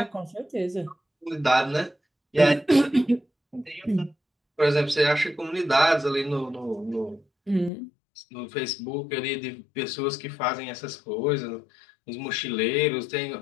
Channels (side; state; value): right; drops out; at 7.7 s